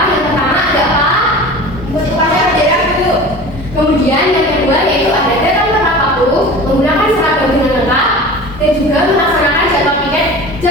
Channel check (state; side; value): normal; both; correlation 0.37